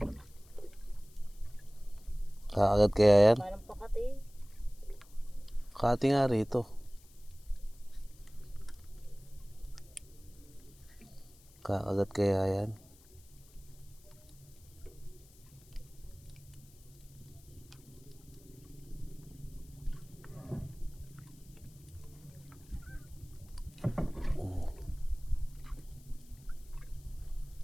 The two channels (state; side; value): noise; left; hiss, 25 dB below the sound